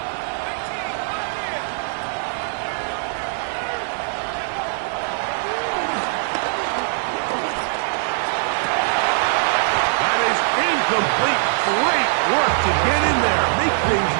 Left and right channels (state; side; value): silent; left; digital silence